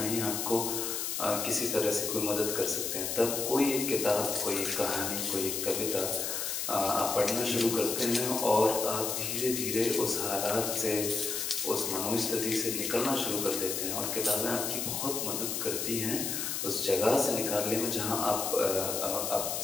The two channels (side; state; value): left; noise; hiss, 2 dB below the sound